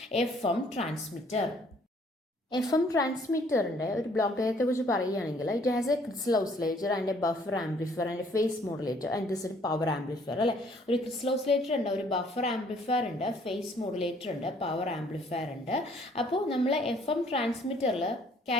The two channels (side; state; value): both; normal; correlation 0.61